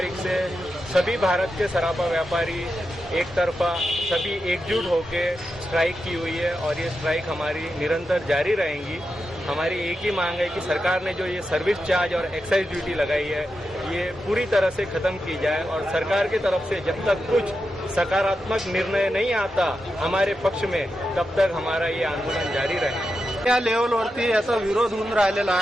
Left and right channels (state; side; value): normal; both; correlation 0.88